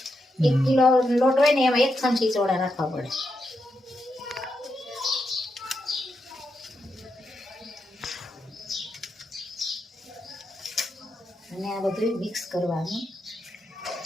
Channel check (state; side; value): normal; both; correlation 0.84